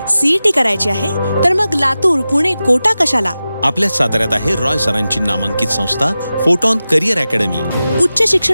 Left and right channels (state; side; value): inverted; both; correlation -0.94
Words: सीईटी करायची आहे तर मग लातूर, पुणे, कोटा कशाला? आपल्या साताऱ्यात आहे रॉय सरांची नामांकित संस्था फोटॉन करिअर अकॅडमी। उच्च